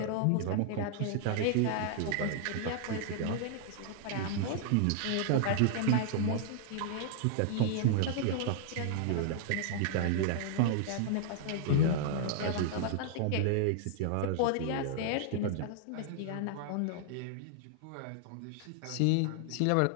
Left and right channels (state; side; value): different; both; correlation 0.00